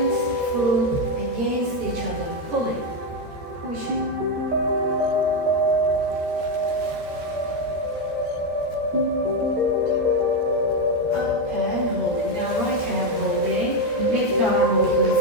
foot against each other. Pulling, pushing. Up and holding. Now right hand holding. Left arm open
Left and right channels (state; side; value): late; left; 13 ms